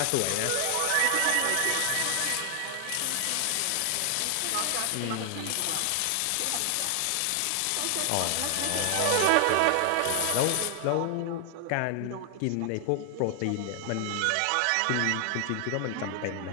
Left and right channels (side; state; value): both; different; correlation 0.00